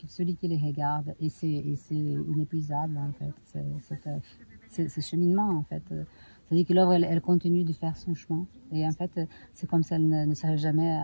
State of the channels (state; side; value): inverted; both; correlation -1.00